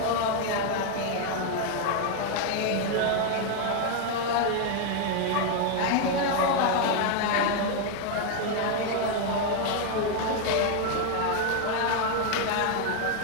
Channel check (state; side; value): different; both; correlation 0.01